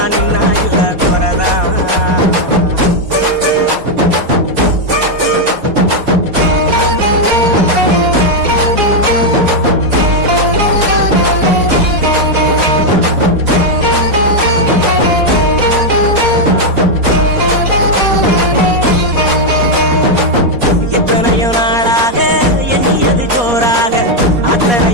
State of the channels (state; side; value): late; left; 4.2 ms